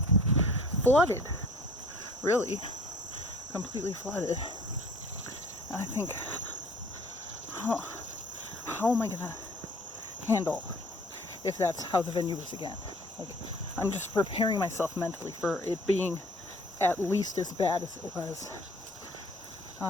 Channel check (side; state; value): both; normal; correlation 0.52